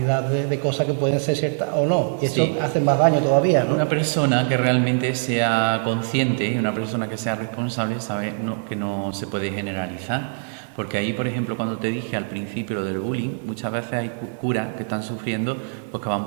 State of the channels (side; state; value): left; silent; 63 dB below the other